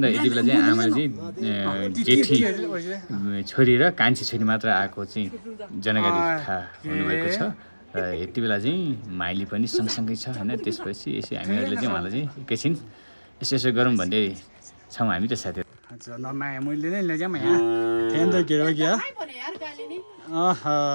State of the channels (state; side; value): inverted; both; correlation -1.00